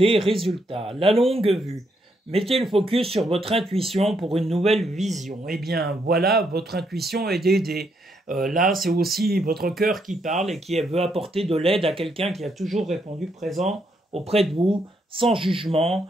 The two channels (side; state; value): both; normal; correlation 0.76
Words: résultats. La longue vue. Mettez le focus sur votre intuition pour une nouvelle vision. Eh bien, voilà, votre intuition est d'aider. Là, c'est aussi votre cœur qui parle et qui veut apporter de l'aide à quelqu'un qui a toujours répondu présent auprès de vous, sans jugement,